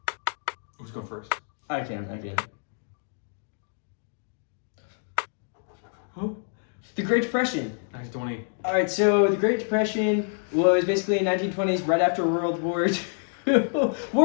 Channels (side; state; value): right; silent; digital silence